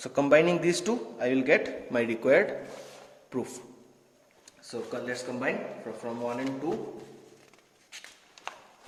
combining these two, I will get my required proof. So let's combine from 1 and 2.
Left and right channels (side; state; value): both; identical; correlation 1.00